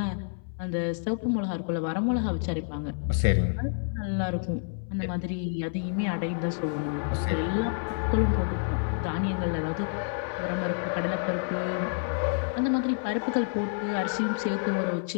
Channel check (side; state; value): right; silent; 59 dB below the other